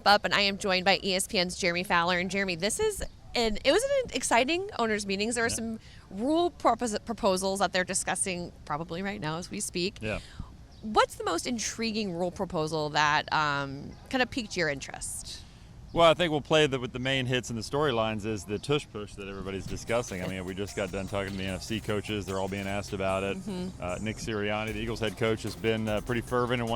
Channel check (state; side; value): identical; both; correlation 1.00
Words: up, and I am joined by ESPN's Jeremy Fowler. And Jeremy, it was an exciting owners meetings. There are some rule proposals that they're discussing probably right now as we speak. Yeah. What's the most intriguing rule proposal that kind of piqued your interest? Well, I think we'll play with the main hits and the storylines is the tush push that everybody's discussing. I mean, we just got done talking to the NFC coaches. They're all being asked about it. Nick Sirianni, the Eagles head coach, has been pretty fervent in